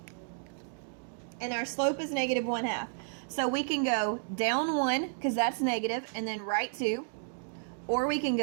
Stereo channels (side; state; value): left; silent; digital silence